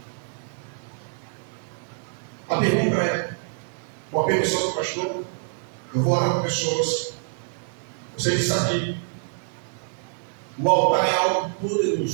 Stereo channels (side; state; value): left; silent; digital silence